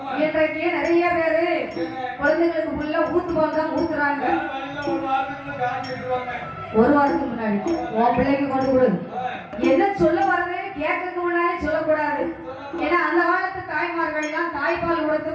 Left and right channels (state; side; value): identical; both; correlation 1.00